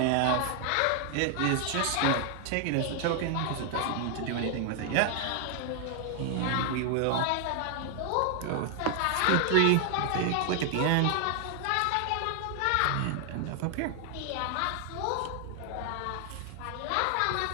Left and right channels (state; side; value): different; both; correlation 0.00